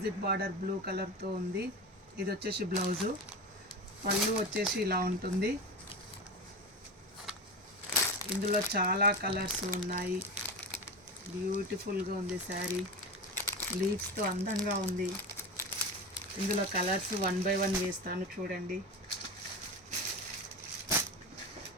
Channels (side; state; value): both; normal; correlation 0.24